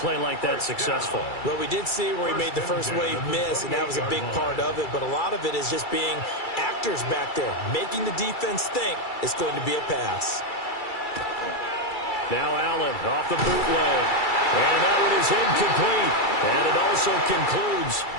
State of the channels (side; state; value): right; late; 2.3 ms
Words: like that successful? Well, we did see where he made the first wave miss, and that was a big part of it. But a lot of it is just being actors back there, making the defense think it's going to be a pass. Now Allen off the bootleg. And that one is incomplete. And it also concludes